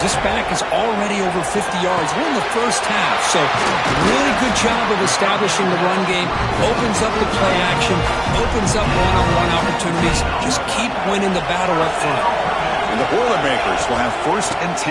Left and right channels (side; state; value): both; identical; correlation 1.00